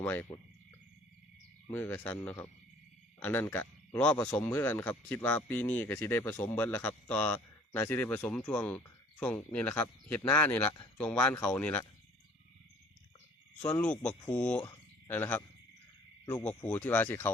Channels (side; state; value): both; normal; correlation 0.53